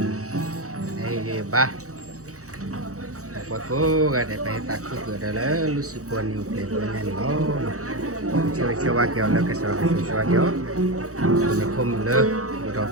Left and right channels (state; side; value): late; left; 0.65 ms